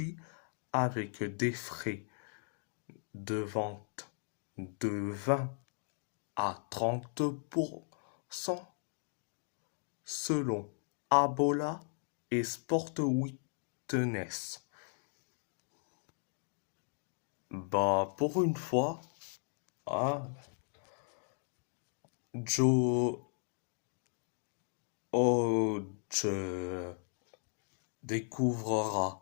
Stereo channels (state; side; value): silent; right; 53 dB below the other